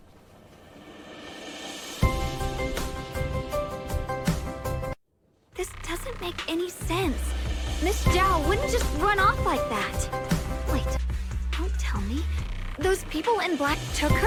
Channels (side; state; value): both; identical; correlation 1.00